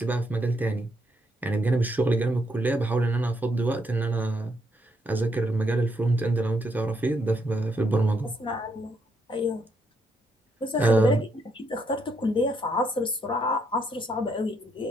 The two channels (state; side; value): normal; both; correlation 0.75